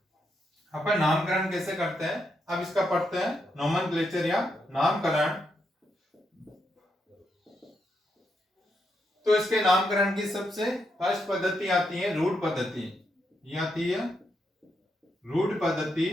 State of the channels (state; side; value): normal; both; correlation 0.81